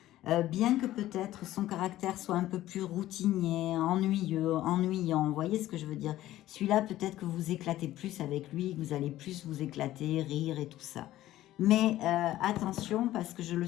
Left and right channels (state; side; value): quieter; right; 14.6 dB